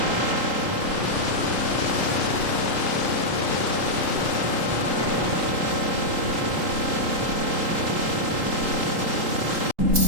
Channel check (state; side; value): late; left; 3.8 ms